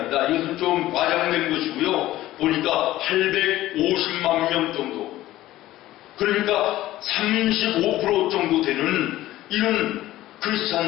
이것은 좀 과장된 것이고요. 보니까 850만 명 정도. 그러니까 35% 정도 되는 이런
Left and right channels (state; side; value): quieter; right; 15.4 dB